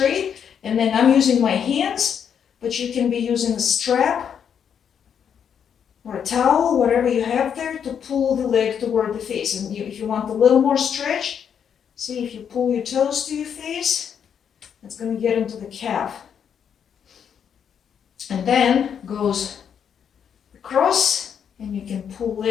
And then I'm using my hands, but you can be using a strap or a towel, whatever you have there, to pull the leg toward the face. And if you want a little more stretch, see if you pull your toes to your face, it's going to get into the calf. And then goes across, and you can pull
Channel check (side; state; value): right; quieter; 7.9 dB